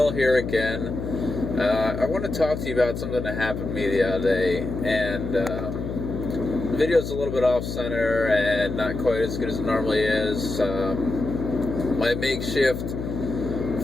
here again. I want to talk to you about something that happened to me the other day, and the video's a little bit off-center and not quite as good as it normally is. My makeshift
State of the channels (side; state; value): left; noise; hum, 6 dB below the sound